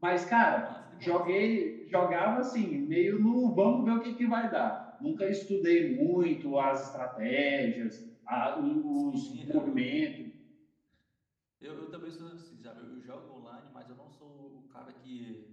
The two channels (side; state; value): both; identical; correlation 1.00